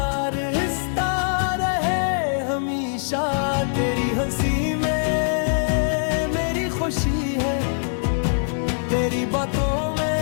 रिश्ता रहे हमेशा। तेरी हंसी में मेरी खुशी है, तेरी बातों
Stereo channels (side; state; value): right; silent; digital silence